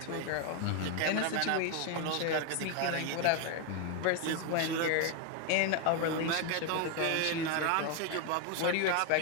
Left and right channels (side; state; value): both; different; correlation 0.01